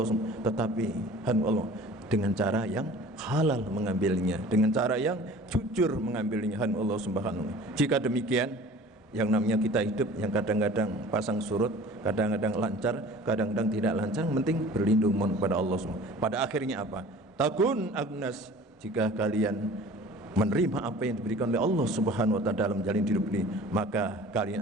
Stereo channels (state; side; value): normal; both; correlation 0.45